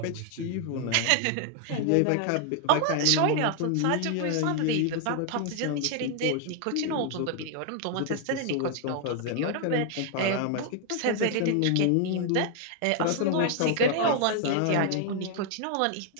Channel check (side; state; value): both; different; correlation 0.00